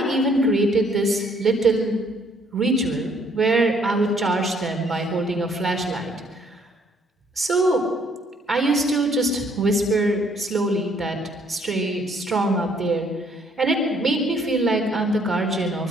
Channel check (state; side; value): normal; both; correlation 0.65